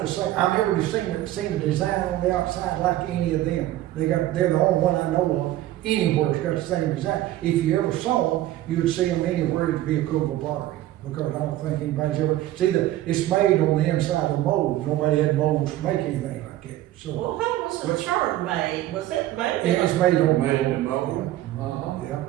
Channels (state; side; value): quieter; left; 14.6 dB